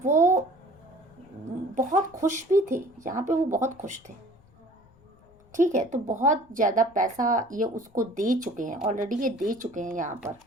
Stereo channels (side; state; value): left; noise; rumble, 29 dB below the sound